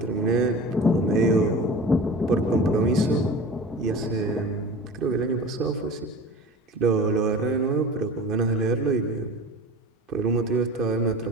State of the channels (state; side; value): normal; both; correlation 0.37